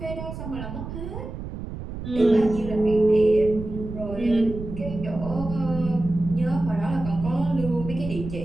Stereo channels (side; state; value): right; noise; rumble, 9 dB below the sound